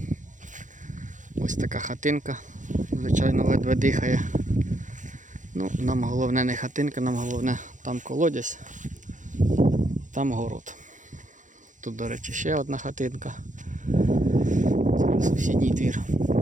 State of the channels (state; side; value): late; left; 0.37 ms